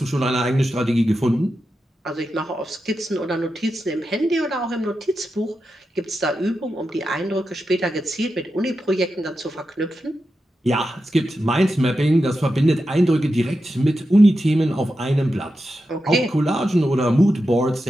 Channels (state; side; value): normal; both; correlation 0.89